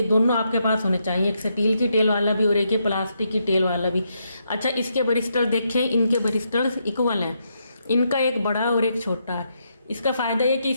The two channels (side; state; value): both; inverted; correlation -0.79